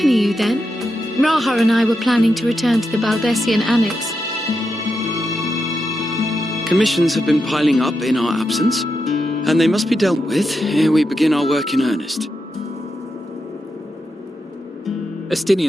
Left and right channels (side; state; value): both; normal; correlation 0.86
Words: you then? Raha and I were planning to return to the Baldessian Annex. Commissions have been piling up in our absence, and they must be dealt with ere we begin our work in earnest.